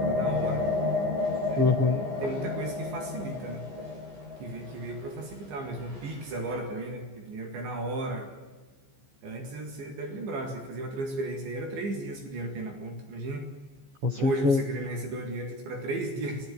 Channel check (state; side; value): late; left; 15 ms